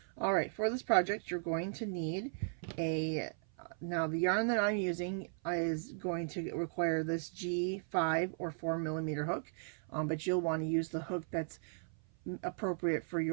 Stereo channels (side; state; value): left; silent; 53 dB below the other